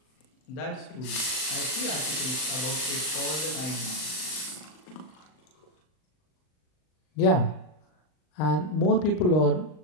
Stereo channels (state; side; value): late; right; 39 ms